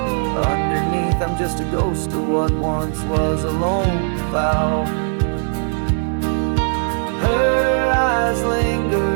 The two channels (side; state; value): left; silent; 61 dB below the other